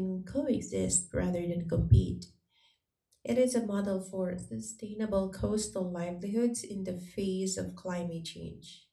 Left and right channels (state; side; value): identical; both; correlation 1.00